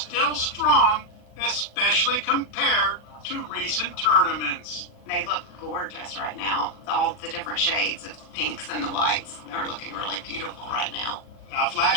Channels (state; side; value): late; right; 40 ms